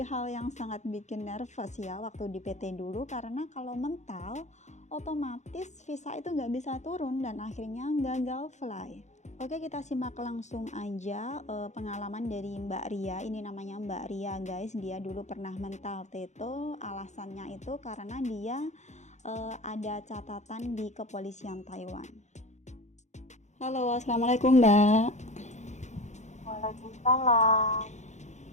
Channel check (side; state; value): right; late; 0.34 ms